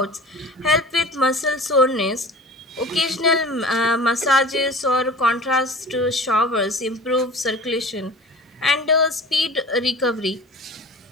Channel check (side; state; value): both; normal; correlation 0.39